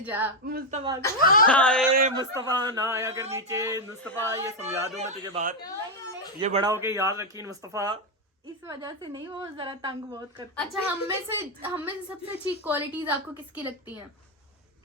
जा? मुस्तफा को। हाय मुस्तफा ना आया कर नीचे। मुस्तफा ये समझा दूं मैं तुझे बात, ये बड़ा होके याद रखी मुस्तफा। इस वजह से नहीं, वो जरा तंग बहुत करता है। अच्छा हम में से सबसे अच्छी क्वालिटीज आपको किसकी लगती हैं?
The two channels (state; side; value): normal; both; correlation 0.03